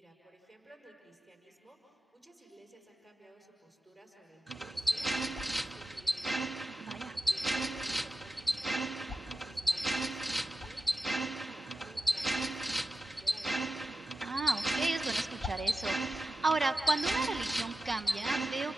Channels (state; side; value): normal; both; correlation 0.93